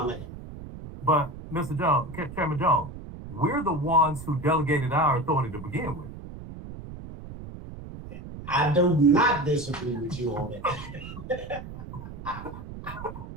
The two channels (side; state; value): right; noise; rumble, 12 dB below the sound